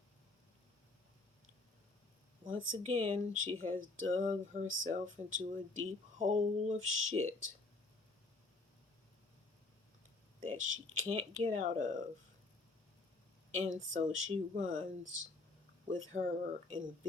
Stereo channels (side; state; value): right; quieter; 3.4 dB